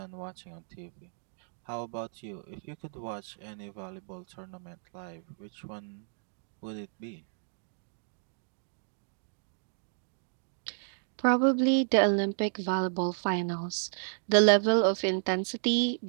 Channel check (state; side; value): silent; left; digital silence